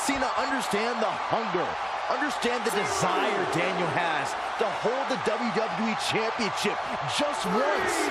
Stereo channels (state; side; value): identical; both; correlation 1.00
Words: Cena understand the hunger, understand the desire Daniel has to hold the WWE Championship just once?